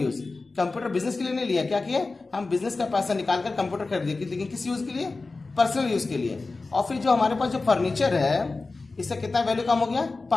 Computer business के लिए नहीं लिया, क्या किया हम बिजनेस का पैसा निकालकर कंप्यूटर खरीद, लेकिन किस यूज के लिए, पर्सनल यूज के लिए। और फिर जो हमारे पास जो फर्नीचर है इससे कितना वैल्यू कम हो गया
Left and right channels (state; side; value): quieter; right; 3.6 dB